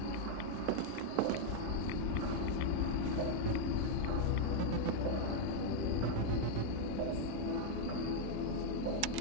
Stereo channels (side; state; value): both; different; correlation 0.00